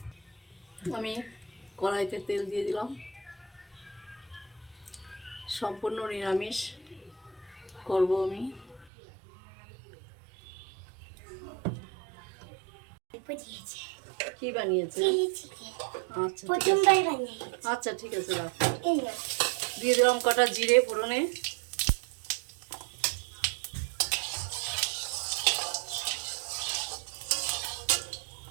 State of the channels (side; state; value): left; drops out; at 8.8 s